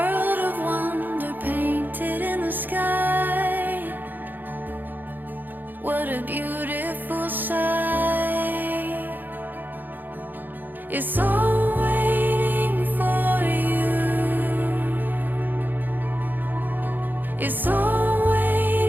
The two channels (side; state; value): left; late; 0.088 ms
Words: of wonder painted in the sky. What a beautiful sight. It's all waiting for you. It's all